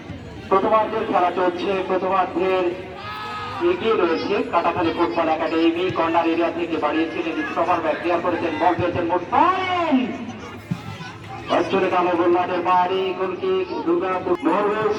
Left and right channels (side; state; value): both; identical; correlation 1.00